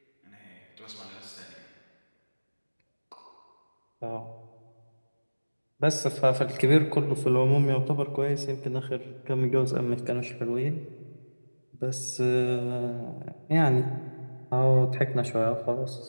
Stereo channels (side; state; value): both; inverted; correlation -1.00